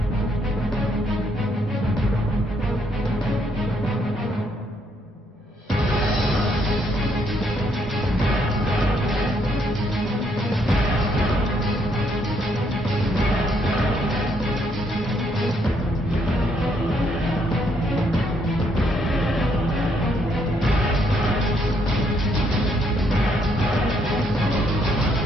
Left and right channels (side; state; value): both; normal; correlation 0.72